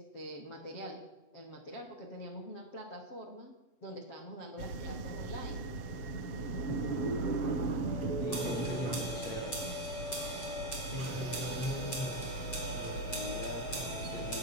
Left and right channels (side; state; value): right; late; 7.7 ms